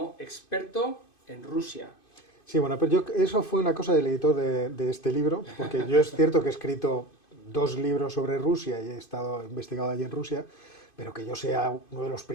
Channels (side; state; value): right; late; 2.5 ms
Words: experto en Rusia. Sí, bueno, pero eso fue una cosa del editor de este libro, porque yo es cierto que he escrito 2 libros sobre Rusia y he investigado allí en Rusia, pero que yo sea uno de los